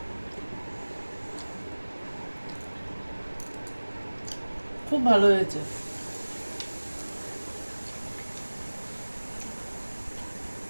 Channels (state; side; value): inverted; both; correlation -1.00